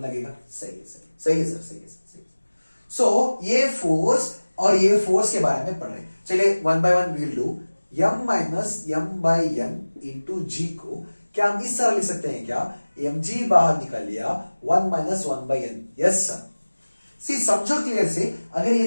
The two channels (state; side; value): inverted; both; correlation -1.00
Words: लगेगा। सही है, सही है सर, सही है सर, सही है। सो ये फोर्स और ये फोर्स के बारे में पढ़ रहे हैं। चलिए 1 by 1 we'll do, m minus m/n into g को क्या हम इस तरह लिख सकते हैं क्या, mg बाहर निकल लिया, 1 माइनस 1/n। Yes sir. सी समझो क्लियर से, अगर